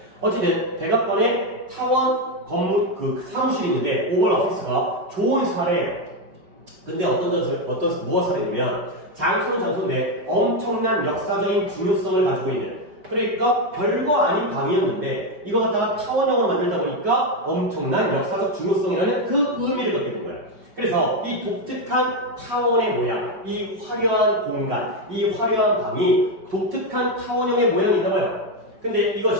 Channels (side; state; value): left; late; 5.2 ms